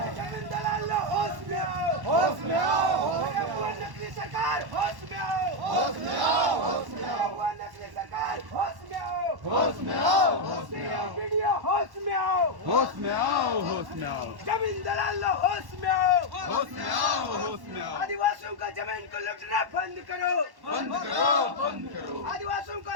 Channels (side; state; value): left; late; 1.1 ms